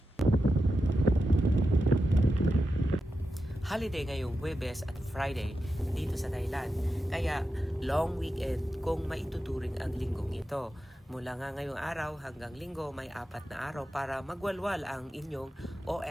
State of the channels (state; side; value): normal; both; correlation 0.89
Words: Holiday ngayong Huwebes at Friday dito sa Thailand. Kaya long weekend kung maituturing ang linggong ito. Mula nga ngayong araw hanggang linggo may 4 na araw para magwalwal ang inyong